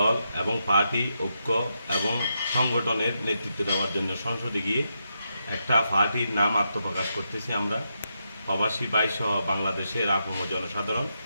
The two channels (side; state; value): both; inverted; correlation -0.84